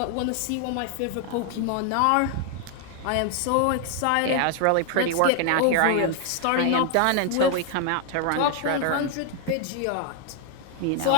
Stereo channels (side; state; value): both; different; correlation 0.00